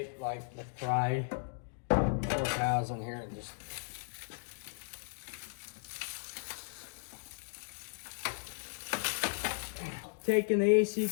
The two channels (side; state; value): right; silent; digital silence